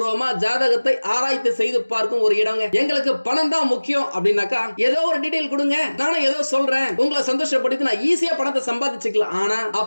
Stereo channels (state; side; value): inverted; both; correlation -1.00